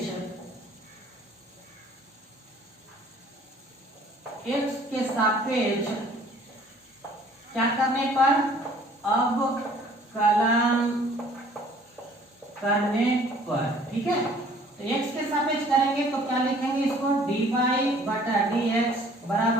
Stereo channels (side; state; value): both; normal; correlation 0.55